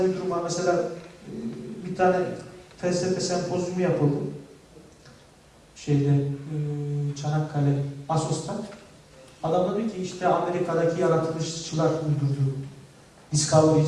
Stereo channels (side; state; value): both; identical; correlation 1.00